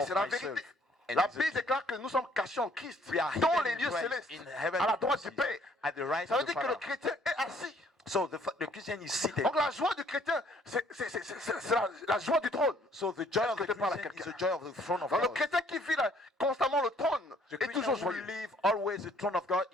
of c'est la myself. vérité. And La it's the Bible déclare que nous sommes cachés en Christ, We are dans hidden les in lieux Christ, célestes, in heaven à la droite du places, Père. at the right Ça veut of the dire que le Father. chrétien est assis. So the Christian is seated. Donc la joie du chrétien, c'est la joie du trône. So the joy of que the tu parles à Christian is quelqu'un? the joy of the throne of Donc le God. chrétien qui vit là, constamment le trône The est toujours Christian who joyeux. live always the throne of God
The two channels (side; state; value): both; normal; correlation 0.61